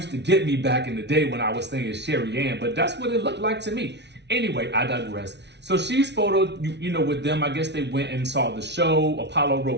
to get me back in the day when I was saying Sherry Ann, but that's what it looked like to me. Anyway, I digress. So she's photoed, you know, with them. I guess they went and saw the show. Apollo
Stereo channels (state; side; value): late; left; 0.50 ms